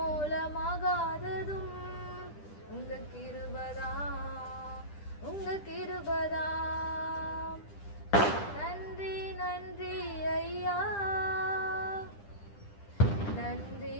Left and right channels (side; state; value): right; late; 10 ms